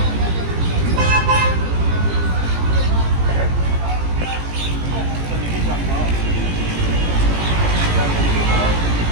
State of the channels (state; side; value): late; left; 18 ms